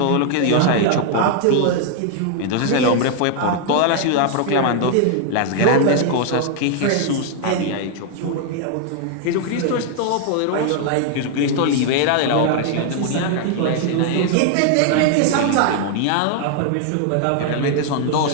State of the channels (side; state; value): both; different; correlation 0.00